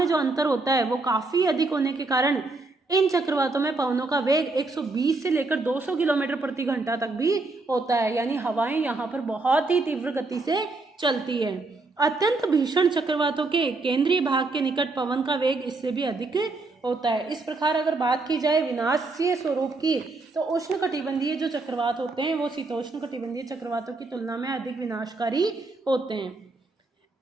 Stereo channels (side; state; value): left; quieter; 3.4 dB